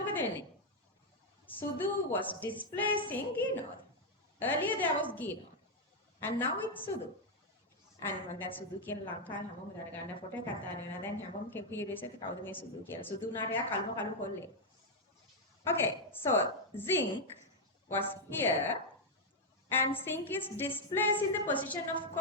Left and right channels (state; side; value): normal; both; correlation 0.00